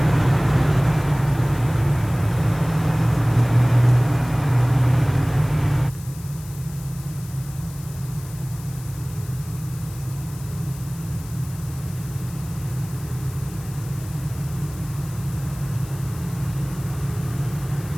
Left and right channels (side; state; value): left; noise; hiss, 18 dB below the sound